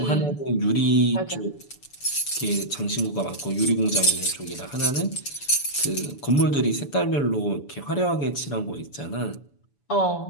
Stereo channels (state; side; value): late; right; 7.0 ms